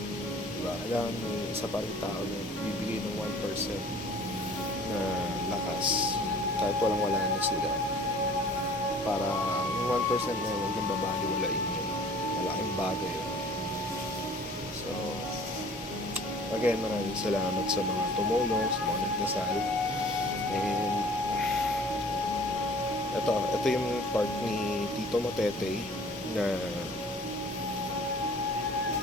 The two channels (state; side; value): normal; both; correlation 0.49